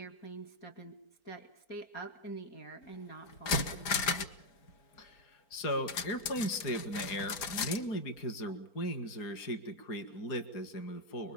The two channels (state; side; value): late; right; 4.4 ms